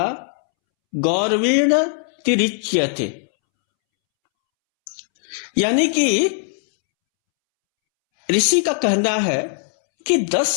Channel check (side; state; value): right; silent; 66 dB below the other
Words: गौरवेण तिरिच्यते। यानी कि ऋषि का कहना है कि